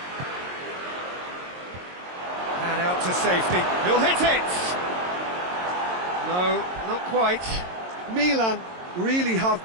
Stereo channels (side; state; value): left; late; 22 ms